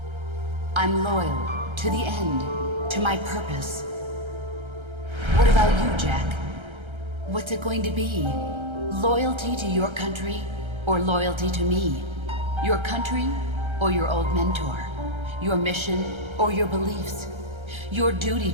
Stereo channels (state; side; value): late; left; 1.3 ms